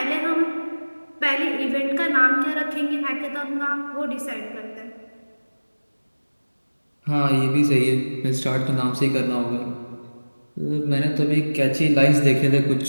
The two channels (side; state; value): both; inverted; correlation -1.00